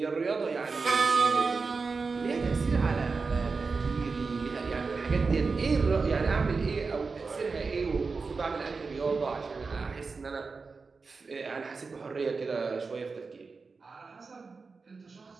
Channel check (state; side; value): quieter; left; 4.5 dB